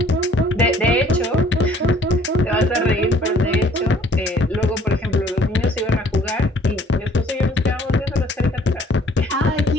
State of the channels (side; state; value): both; normal; correlation 0.57